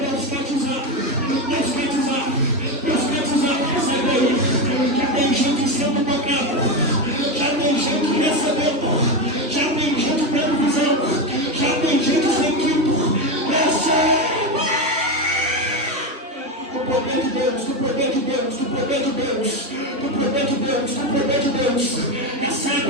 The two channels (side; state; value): both; normal; correlation 0.14